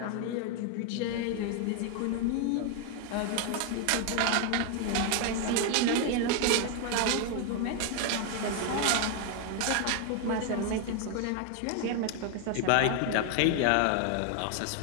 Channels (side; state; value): both; different; correlation 0.01